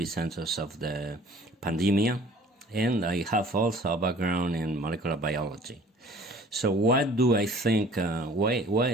of the pandemia, and I have also a background in molecular biology. So what do I think,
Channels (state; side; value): normal; both; correlation 0.50